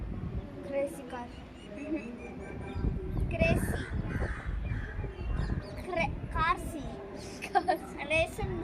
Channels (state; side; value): identical; both; correlation 1.00